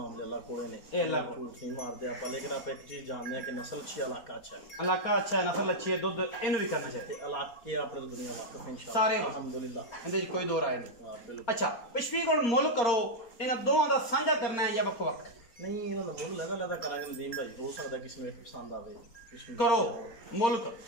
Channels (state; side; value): late; right; 4.3 ms